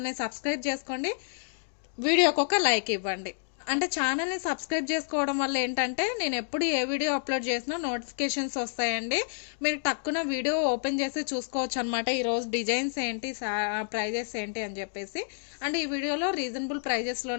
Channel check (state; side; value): silent; right; digital silence